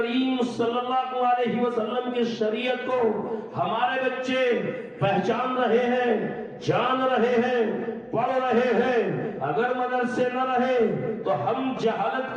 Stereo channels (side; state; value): both; identical; correlation 1.00